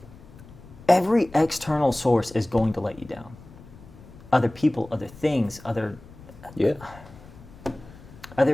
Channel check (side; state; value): left; noise; rumble, 20 dB below the sound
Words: every external source is going to let you down. Other people, other things, other